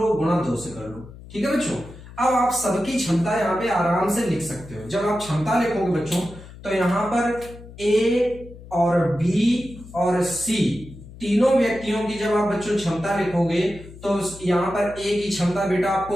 गुणा 2 से कर लो। ठीक है बच्चों। अब आप सबकी क्षमता यहाँ पे आराम से लिख सकते हो। जब आप क्षमता लिखोगे बच्चों तो यहाँ पर ए और बी और सी तीनों व्यक्तियों की जब आप बच्चों क्षमता लिखोगे तो यहाँ पर ए की क्षमता बेटा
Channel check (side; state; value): left; noise; hum, 17 dB below the sound